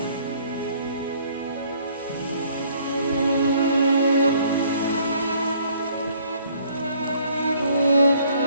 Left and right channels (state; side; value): inverted; both; correlation -0.60